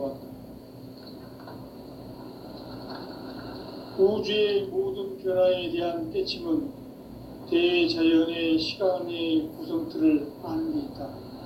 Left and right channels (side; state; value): both; identical; correlation 1.00